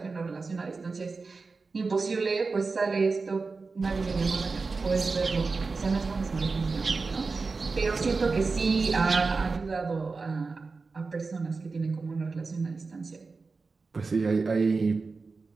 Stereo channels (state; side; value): quieter; left; 4.2 dB